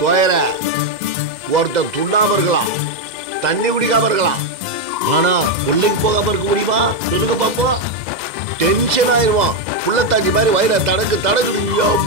தோயர ஒருத்தர் துண்ணாம இருக்கலாம், தண்ணி குடிக்காம இருக்கலாம், ஆனா கொல்லைக்கு போகாம இருக்க முடியுமா? சொல்லுங்க பாப்போம். டென்ஷன் ஆயிடுவான். புள்ளத்தாச்சி மாதிரி வயிற தடக்கு தடக்குடு.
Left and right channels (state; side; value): late; left; 2.0 ms